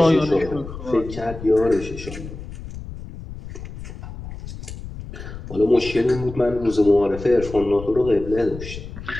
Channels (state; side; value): noise; left; rumble, 12 dB below the sound